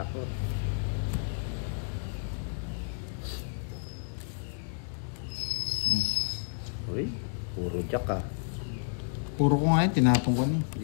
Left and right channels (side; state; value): right; silent; digital silence